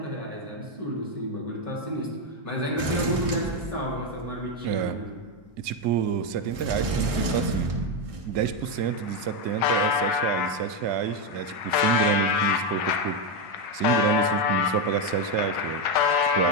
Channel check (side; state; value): left; late; 1.6 ms